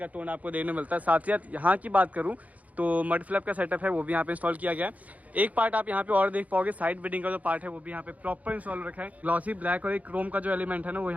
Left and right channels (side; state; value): left; late; 0.073 ms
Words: टोन आपको देखने मिलता है। साथ ही साथ यहाँ की बात करूँ तो मड फ्लैप का सेटअप है वो भी यहाँ पे इंस्टॉल किया गया है। एक पार्ट आप यहाँ पे और देख पाओगे, साइड बिडिंग का जो पार्ट है वो भी यहाँ पे प्रॉपर इंस्टॉल रखा है। ग्लॉसी ब्लैक और एक क्रोम का जो एलिमेंट है ना वो